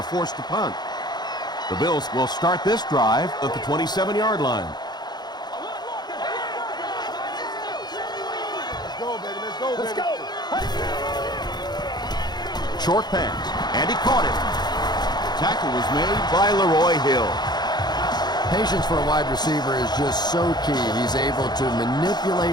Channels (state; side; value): late; right; 0.20 ms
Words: forced to punt. The Bills will start this drive at the 27-yard line. Let's go, baby. Let's go, baby. Let's go. Short pass, and he caught it. Tackle was made by Leroy Hill. Patience for a wide receiver is just so key. He's able to